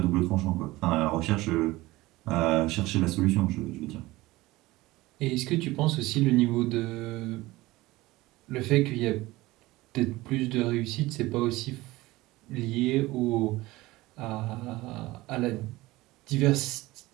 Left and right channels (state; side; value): quieter; left; 19.3 dB